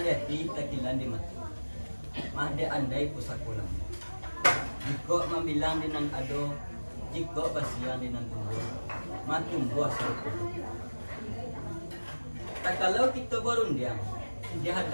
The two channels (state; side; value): inverted; both; correlation -1.00